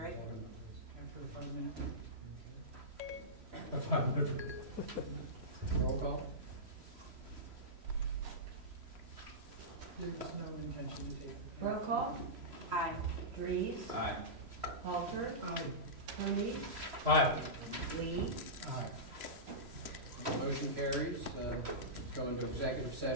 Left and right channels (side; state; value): left; late; 3.0 ms